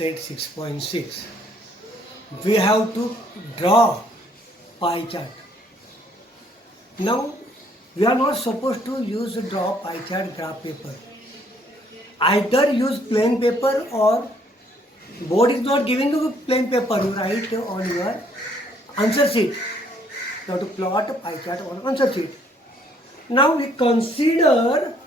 6.6. we have to draw pie chart. Now we are not supposed to use draw pie chart graph paper. Either use plain paper or board is not giving you plain paper. You write on your answer sheet. You have to plot a pie chart on answer sheet. Now we consider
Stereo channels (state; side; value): normal; both; correlation 0.64